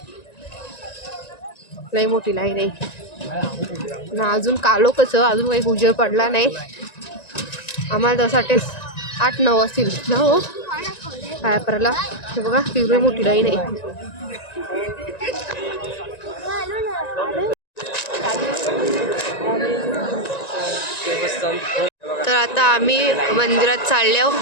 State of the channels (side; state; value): right; late; 1.9 ms